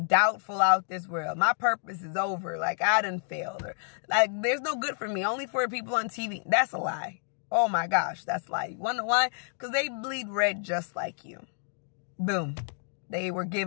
out this world. My purpose is over. Like I done failed. Or like there's no good for me. Only for people on TV. That's a lie. Oh my gosh, that's a lie. You wonder why? Because they bleed red just like you. Boom. They were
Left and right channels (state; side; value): silent; right; digital silence